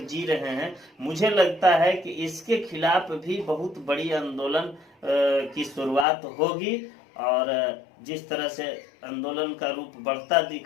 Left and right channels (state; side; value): drops out; right; at 6.1 s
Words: जी रहे हैं। मुझे लगता है कि इसके खिलाफ भी बहुत बड़ी आंदोलन की शुरुआत होगी और जिस तरह से आंदोलन का रूप बढ़ता